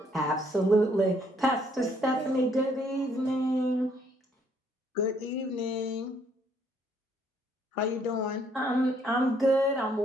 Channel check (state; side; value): normal; both; correlation 0.67